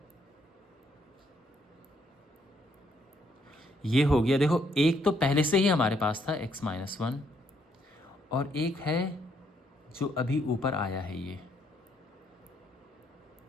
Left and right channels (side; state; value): both; normal; correlation 0.71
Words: ये हो गया। देखो एक तो पहले से ही हमारे पास था x-1, और एक है जो अभी ऊपर आया है, ये